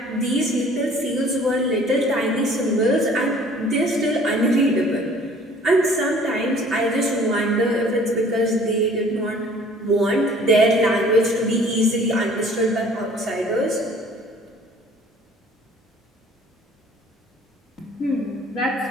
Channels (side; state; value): both; normal; correlation 0.53